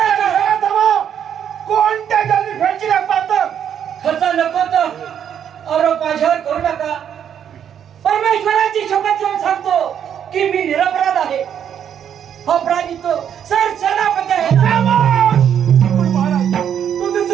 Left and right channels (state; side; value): quieter; left; 8.9 dB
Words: कोणत्या जल्दी फेडची पाहतो खर्च नको तर आरोप माझ्यावर करू नका परमेश्वराची शपथ घेऊन सांगतो की मी निरपराध आहे अपराधी तो सर सेनापती आहे पण महाराज तो